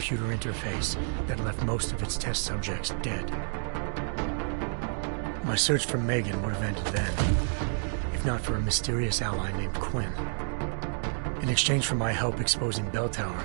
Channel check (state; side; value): silent; left; 58 dB below the other